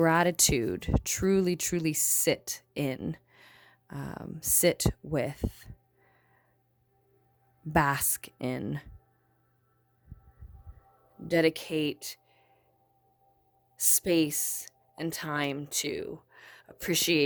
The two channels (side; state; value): both; identical; correlation 1.00